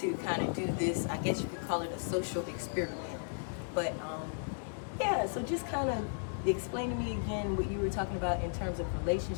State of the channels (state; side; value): silent; right; digital silence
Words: kind of do this. I guess you could call it a social experiment. But yeah, so just kind of explain to me again what you were talking about in terms of